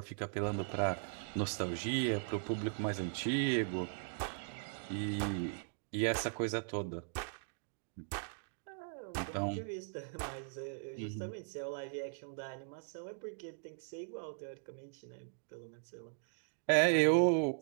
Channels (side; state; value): left; silent; digital silence